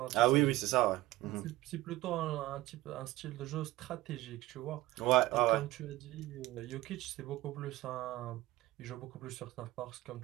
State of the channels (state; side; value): quieter; left; 18.1 dB